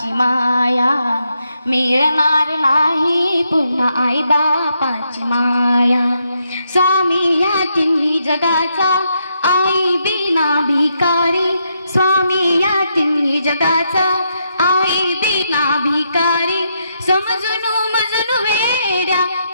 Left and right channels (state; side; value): inverted; both; correlation -0.79